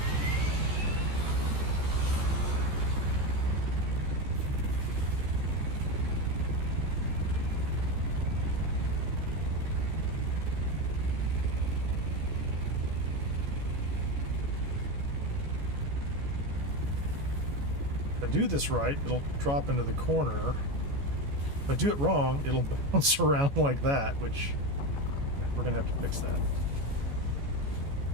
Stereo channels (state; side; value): late; left; 14 ms